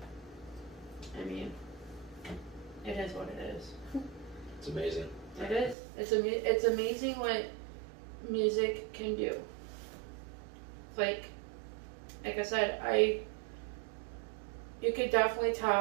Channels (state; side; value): drops out; left; at 5.8 s